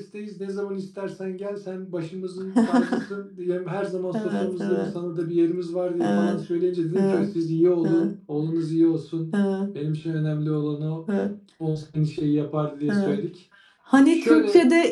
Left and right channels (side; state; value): both; identical; correlation 1.00